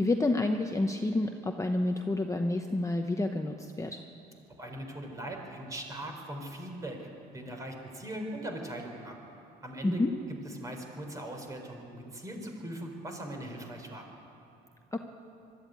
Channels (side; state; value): both; normal; correlation 0.83